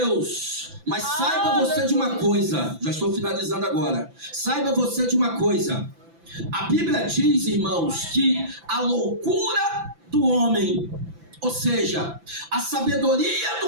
Mas saiba você de uma coisa, já estou finalizando agora. Saiba você de uma coisa. A Bíblia diz, irmãos, que a loucura do homem, ou seja, a sabedoria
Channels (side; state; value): left; late; 5.9 ms